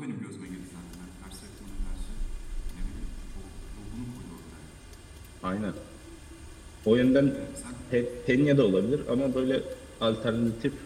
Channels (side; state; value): both; identical; correlation 1.00